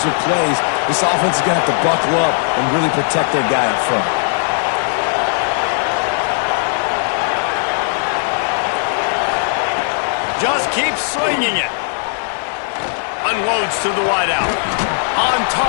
plays. This offense is going to have to buckle up and really protect their guy up front. Just keeps swinging it. Unloads to the wideout. On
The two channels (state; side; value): silent; right; 56 dB below the other